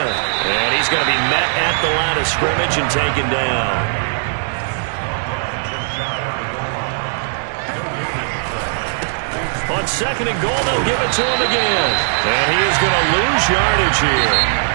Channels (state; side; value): silent; left; digital silence